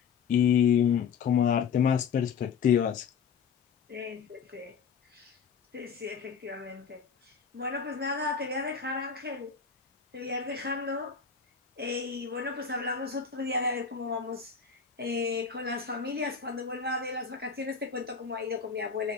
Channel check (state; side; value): quieter; right; 6.5 dB